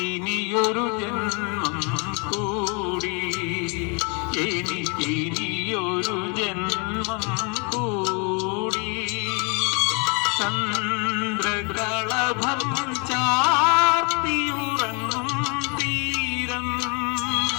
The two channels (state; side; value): quieter; right; 34.0 dB